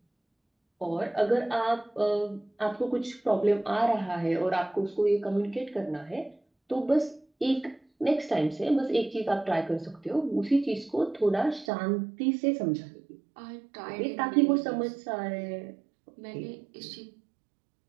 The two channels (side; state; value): left; drops out; at 11.7 s